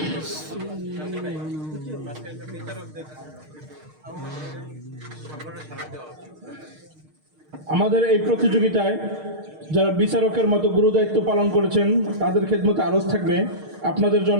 আমাদের এই প্রতিযোগিতায় যারা বিচারকের মতো গুরুদায়িত্ব পালন করেছেন তাদের খেদমতে আরজ থাকবে। আপনাদের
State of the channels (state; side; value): late; left; 6.5 ms